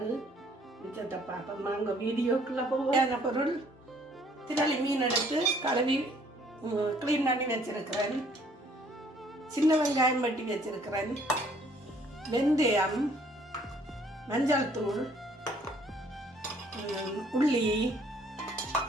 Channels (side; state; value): both; normal; correlation 0.61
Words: மிச்சத்தை பார்ப்போம். வாங்க வீடியோக்குள்ளே போவான பொருள்: திரளி மீன் எடுத்து கழுவி க்ளீன் பண்ணி வச்சிருக்கிறேன். சின்ன வெங்காயம் வெட்டி வச்சிருக்கிறேன். வெந்தயம், மஞ்சள் தூள், உள்ளி,